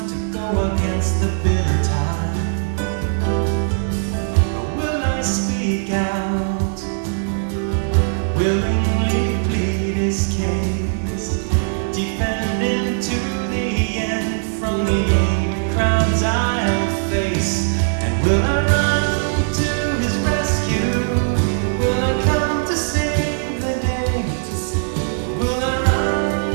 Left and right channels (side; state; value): left; silent; digital silence